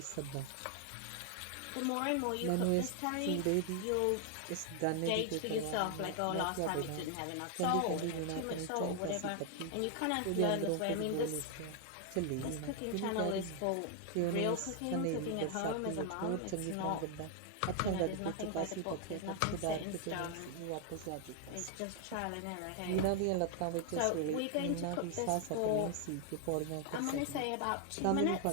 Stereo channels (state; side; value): different; both; correlation 0.00